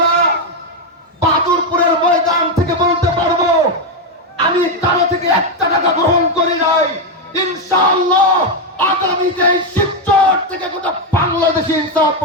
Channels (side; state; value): both; normal; correlation 0.05